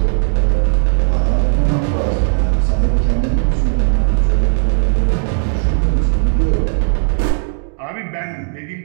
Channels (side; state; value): left; silent; digital silence